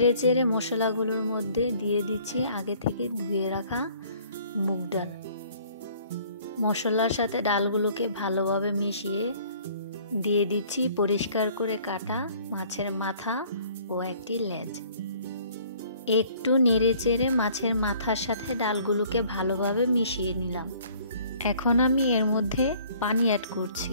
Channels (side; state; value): both; inverted; correlation -0.56